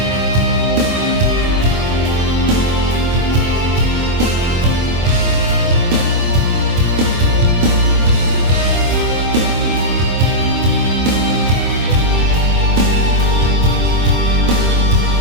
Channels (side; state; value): left; late; 24 ms